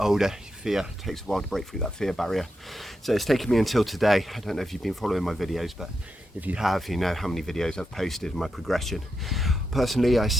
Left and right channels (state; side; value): normal; both; correlation 0.86